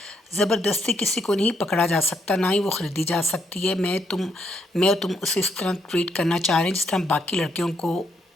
زبردستی کسی کو نہیں پکڑا جا سکتا، نہ ہی وہ خریدی جا سکتی ہے. میں اور تم اسے اس طرح ٹریٹ کرنا چاہ رہے ہیں جس طرح باقی لڑکیوں کو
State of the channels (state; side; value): normal; both; correlation 0.75